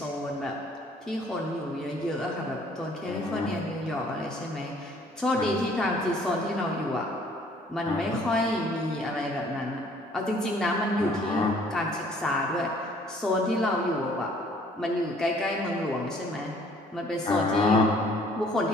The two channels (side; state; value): both; normal; correlation 0.58